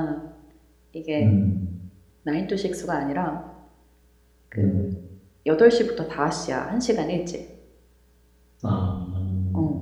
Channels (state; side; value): identical; both; correlation 1.00